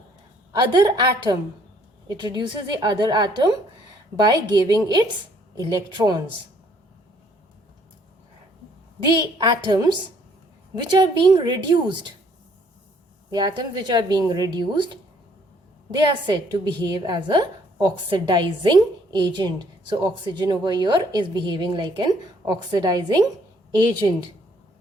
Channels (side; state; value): both; normal; correlation 0.63